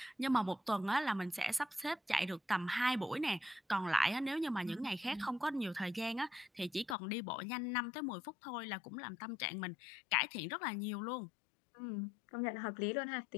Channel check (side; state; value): right; drops out; at 7.0 s